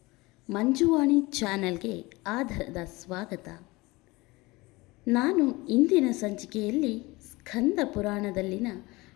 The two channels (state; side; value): quieter; right; 22.5 dB